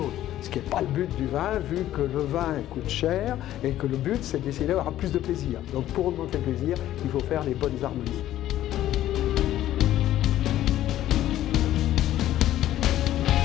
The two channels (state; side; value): quieter; right; 13.1 dB